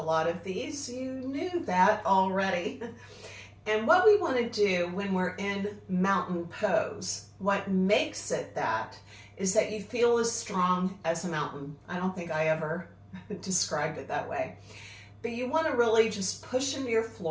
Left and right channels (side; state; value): both; identical; correlation 1.00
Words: of these, you knew that already. And what we want to do when we're in mountain pose, what makes it that, is that you feel as strong as a mountain. I don't think I ever described it that way. But you want to really just push into your